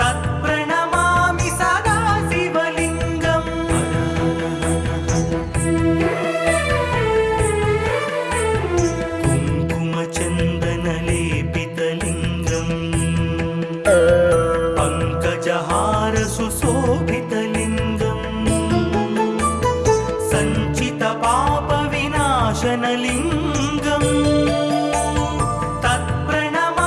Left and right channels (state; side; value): identical; both; correlation 1.00